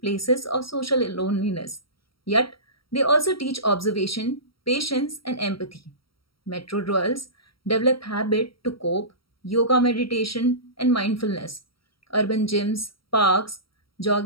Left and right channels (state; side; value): late; right; 0.75 ms